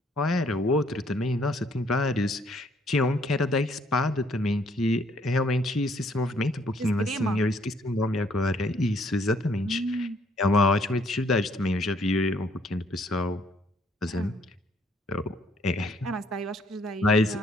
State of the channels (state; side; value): normal; both; correlation 0.65